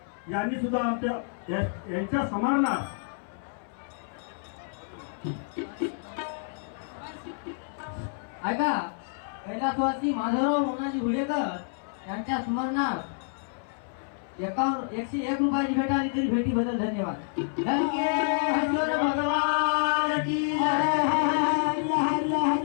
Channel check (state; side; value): silent; right; 59 dB below the other